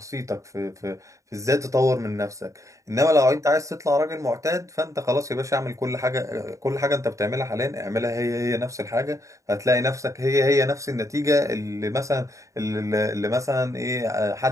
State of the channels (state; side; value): late; left; 0.15 ms